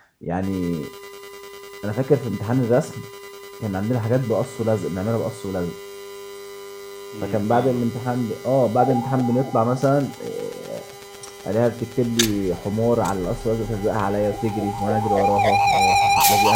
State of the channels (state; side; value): identical; both; correlation 1.00